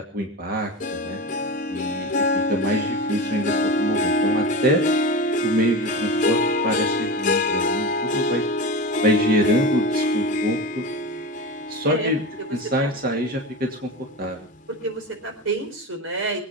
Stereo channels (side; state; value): both; normal; correlation 0.25